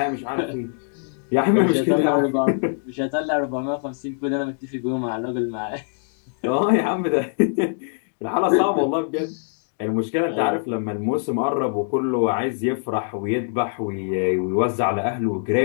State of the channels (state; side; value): silent; right; digital silence